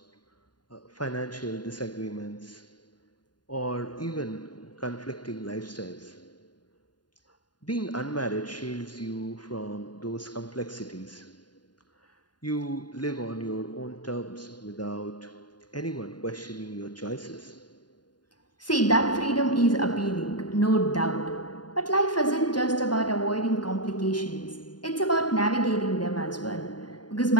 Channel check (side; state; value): right; late; 0.70 ms